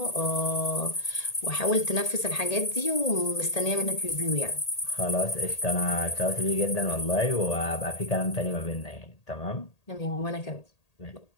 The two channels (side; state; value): right; late; 1.8 ms